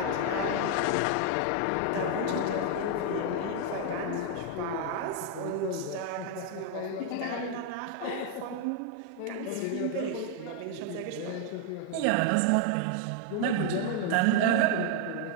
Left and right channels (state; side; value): different; both; correlation 0.00